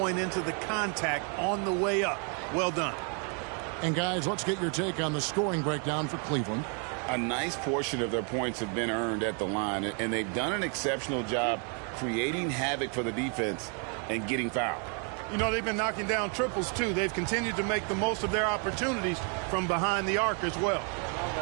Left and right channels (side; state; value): left; quieter; 39.1 dB